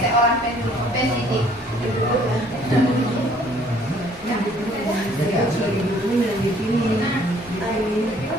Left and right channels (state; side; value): normal; both; correlation 0.59